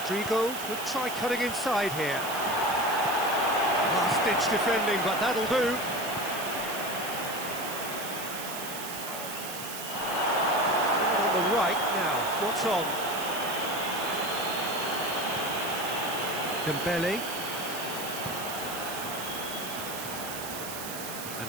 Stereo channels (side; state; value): right; noise; hiss, 8 dB below the sound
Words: could try cutting inside here. Last-ditch defending, but that'll do. On the right now, what's on? Dembele. And